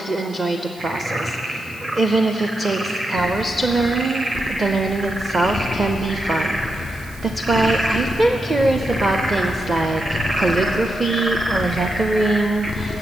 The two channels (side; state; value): right; noise; hiss, 24 dB below the sound